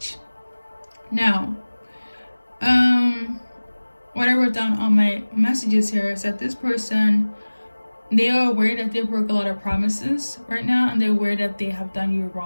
Now, what I wrote down on my messages here is that this person, they are aware that they broke a lot of promises right now, and they're aware that they have done you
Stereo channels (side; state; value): both; inverted; correlation -1.00